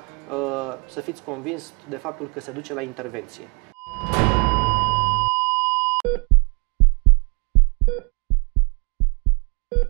să fiți convins de faptul că se duce la intervenție.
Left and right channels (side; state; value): left; quieter; 30.7 dB